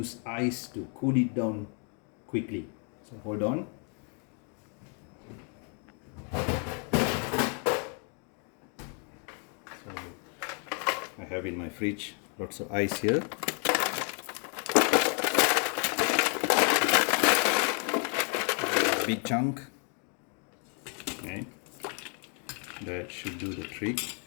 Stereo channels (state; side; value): quieter; right; 38.3 dB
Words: ice to cool it down quickly. So hold on. So I have in my fridge lots of ice here. A big chunk. Okay. That should do the trick.